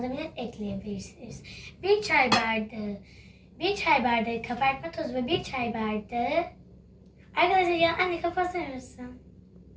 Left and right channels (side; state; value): both; identical; correlation 1.00